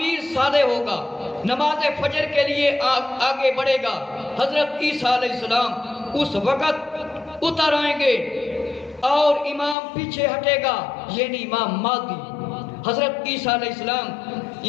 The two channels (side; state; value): right; drops out; at 9.8 s